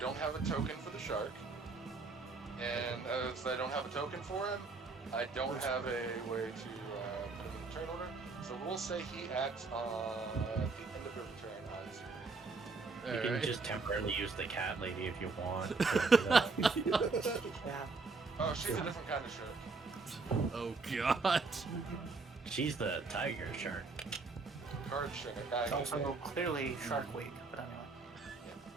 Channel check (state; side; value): quieter; left; 4.1 dB